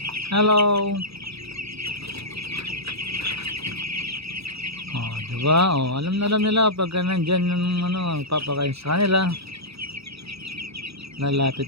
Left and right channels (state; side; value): late; left; 0.77 ms